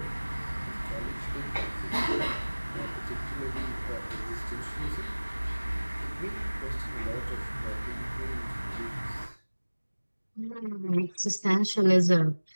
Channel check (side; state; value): both; inverted; correlation -1.00